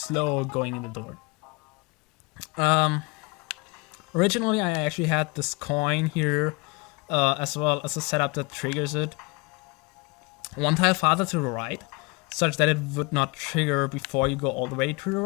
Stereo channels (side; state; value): right; quieter; 26.9 dB